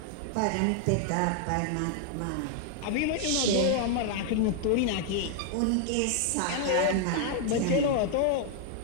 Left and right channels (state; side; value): different; both; correlation 0.00